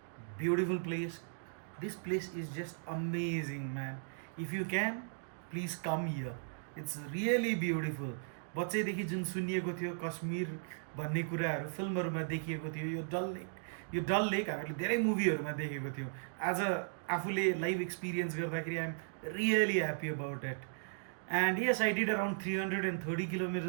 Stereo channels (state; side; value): silent; left; digital silence